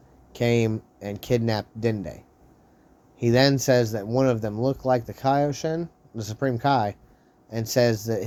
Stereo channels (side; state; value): both; identical; correlation 1.00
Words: came and kidnapped Dende. He then says that one of them looked like the Kaioshin, the Supreme Kai, and says that